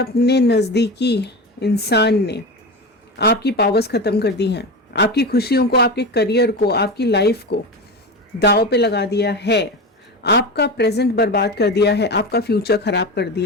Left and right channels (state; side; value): normal; both; correlation 0.24